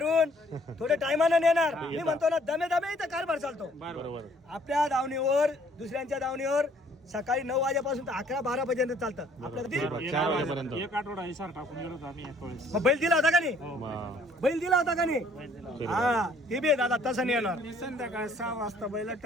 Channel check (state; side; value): normal; both; correlation 0.61